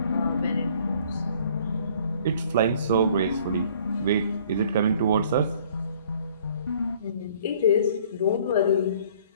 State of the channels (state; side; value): inverted; both; correlation -0.56